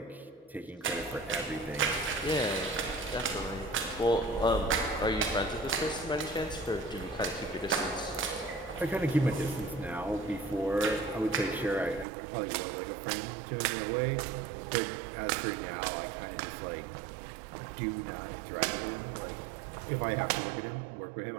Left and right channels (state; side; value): drops out; left; at 12.1 s